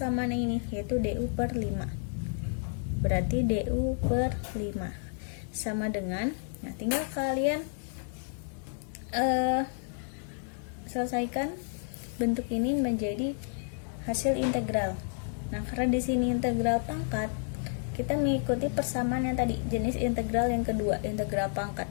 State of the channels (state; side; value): silent; right; 57 dB below the other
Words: ini, yaitu du per 5. Berarti du per 5 sama dengan, nah tinggal kalian selesaikan bentuk ini menjadi hasil integral. Nah, karena di sini integral pangkat, kita mengikuti persamaan yang tadi, jenis integral yang kedua, integral